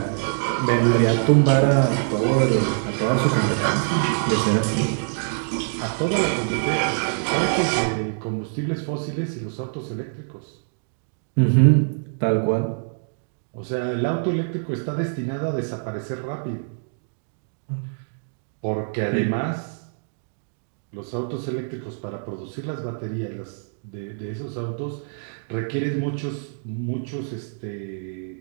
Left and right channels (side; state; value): left; silent; digital silence